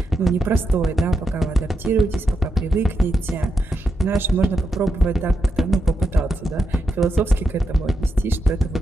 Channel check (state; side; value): normal; both; correlation 0.85